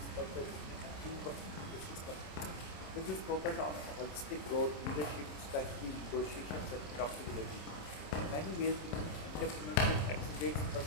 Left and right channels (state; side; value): late; right; 27 ms